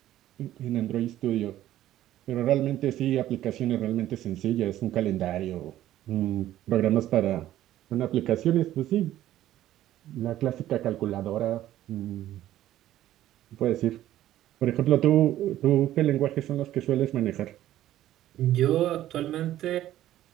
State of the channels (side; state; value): left; quieter; 13.4 dB